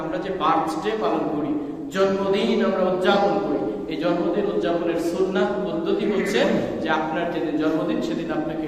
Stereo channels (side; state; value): both; identical; correlation 1.00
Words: আমরা যে বার্থডে পালন করি, জন্মদিন আমরা উদযাপন করি, এই জন্মদিন উদযাপনের সুন্নাহ পদ্ধতি হচ্ছে যে আপনার যেদিন জন্মদিন সেদিন আপনাকে